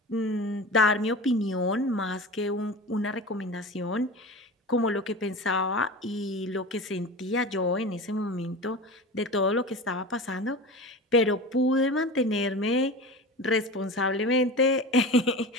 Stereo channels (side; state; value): both; normal; correlation 0.31